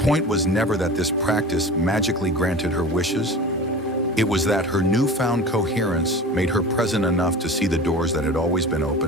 was never that this practice magically granted her wishes. It was that her newfound coherence made her present enough to see the doors that had always been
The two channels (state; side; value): normal; both; correlation 0.36